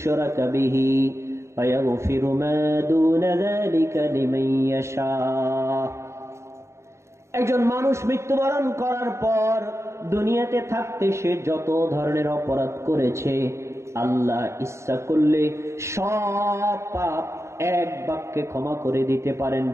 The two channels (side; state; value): left; late; 0.14 ms